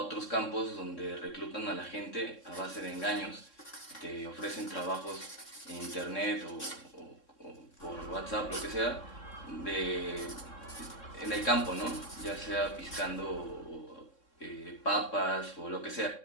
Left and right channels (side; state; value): right; late; 3.6 ms